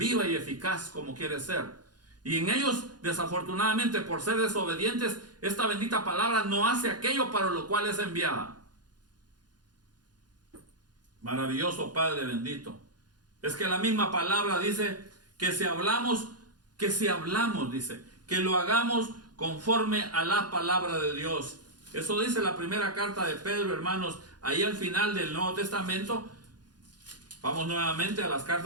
y eficaz como quiere ser. Y en ellos, desafortunadamente, por ser desobedientes, esta bendita palabra no hace aquello para lo cual es enviada. Maravilloso Padre bendito. Es que la misma palabra dice que si hablamos, dice, que lo hagamos conforme a la palabra de Dios. Eso dice la primera carta de Pedro, hermanos, ahí al final del Nuevo Testamento. Vamos nuevamente a las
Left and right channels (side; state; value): left; late; 0.70 ms